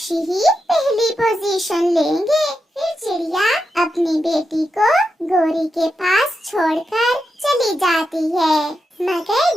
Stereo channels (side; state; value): both; normal; correlation 0.87